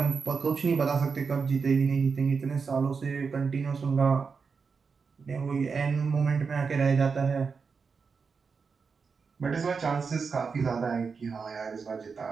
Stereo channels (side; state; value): left; quieter; 5.3 dB